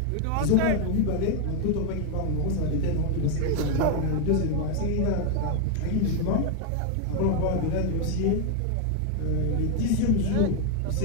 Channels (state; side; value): different; both; correlation 0.01